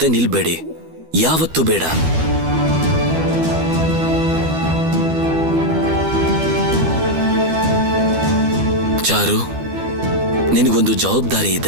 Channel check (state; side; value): late; left; 12 ms